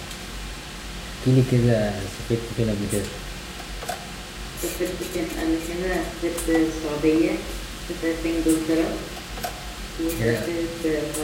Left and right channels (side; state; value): both; identical; correlation 1.00